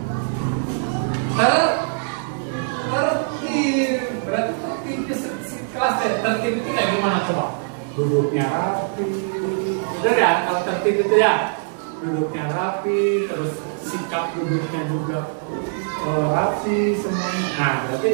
Tertib. Berarti tertibnya kelas tertib itu kayak gimana coba? Duduknya rapi. Bener ya, kalau tertib itu ya duduknya rapi, terus sikap duduknya juga rapi semuanya. Nah, berarti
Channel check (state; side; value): silent; left; digital silence